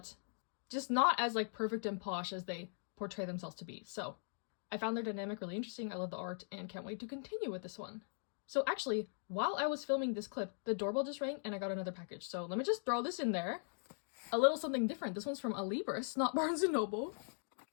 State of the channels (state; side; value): silent; right; digital silence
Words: just not as like perfect and posh as they portray themselves to be. So I found their dynamic really interesting. I love the art and can't wait to continue with this one. So actually, while I was filming this clip, the doorbell just rang and I got another package. So let me just throw this in there. A little something different. This one's from Alibris, not Barnes & Noble.